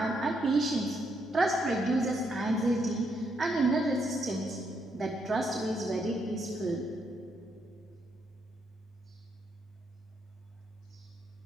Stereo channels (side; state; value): both; normal; correlation 0.77